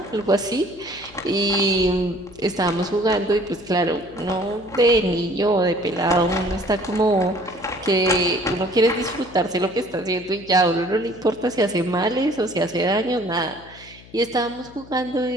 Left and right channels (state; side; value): noise; left; hum, 22 dB below the sound